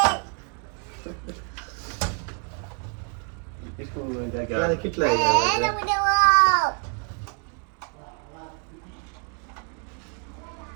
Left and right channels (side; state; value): left; quieter; 38.4 dB